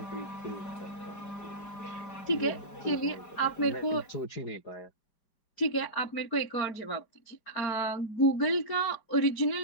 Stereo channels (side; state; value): right; late; 5.0 ms